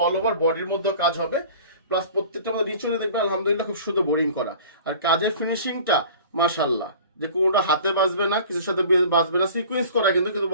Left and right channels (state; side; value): inverted; both; correlation -0.43